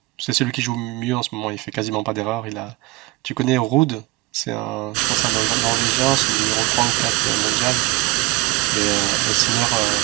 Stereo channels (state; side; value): quieter; left; 20.9 dB